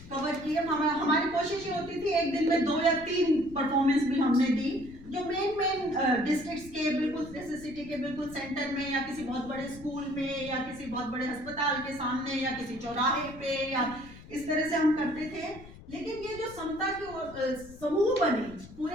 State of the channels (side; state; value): left; noise; rumble, 18 dB below the sound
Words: कवर किए। हमारी कोशिश ये होती थी एक दिन में 2 या 3 परफॉर्मेंस भी हमने दी, जो मेन डिस्ट्रिक्ट्स के बिल्कुल जैसे सिटी के बिल्कुल सेंटर में या किसी बहुत बड़े स्कूल में या किसी बहुत बड़े अस्पताल के सामने या किसी चौराहे पे या इस तरह से हम करते थे। लेकिन ये जो समता के समूह बने